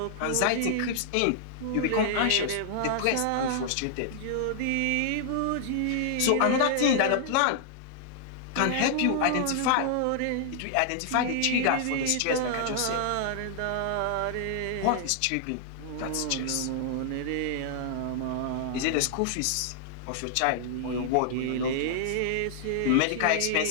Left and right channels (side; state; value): both; different; correlation -0.01